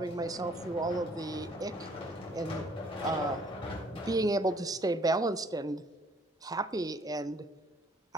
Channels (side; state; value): both; normal; correlation 0.61